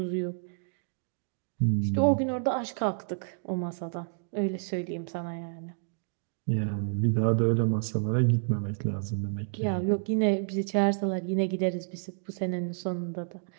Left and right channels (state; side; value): silent; left; digital silence